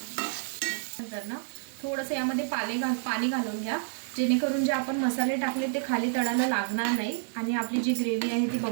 नंतर ना थोडंसं यामध्ये पाणी घालून घ्या, जेणेकरून जे आपण मसाले टाकले ते खाली तळाला लागणार नाही आणि आपली जी ग्रेव्ही आहे ती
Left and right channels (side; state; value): left; silent; digital silence